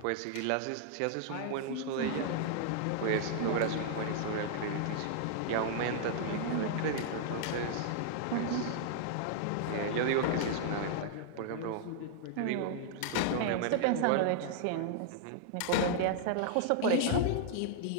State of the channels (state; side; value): different; both; correlation -0.01